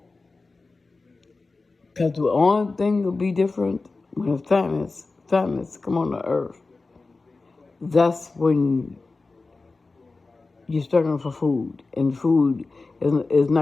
Because the only thing will be different when the famines come on the earth. That's when you're struggling for food, and food is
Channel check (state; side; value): quieter; right; 3.7 dB